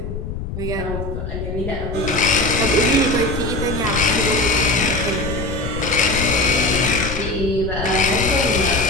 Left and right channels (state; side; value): noise; left; rumble, 6 dB below the sound